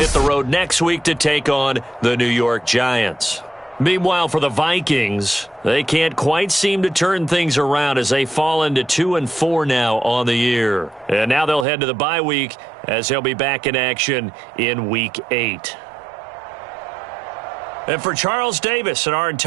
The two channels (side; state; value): left; drops out; at 11.7 s